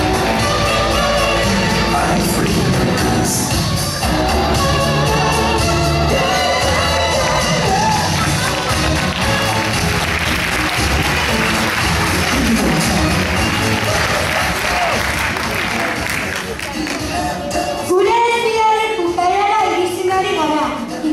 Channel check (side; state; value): both; identical; correlation 1.00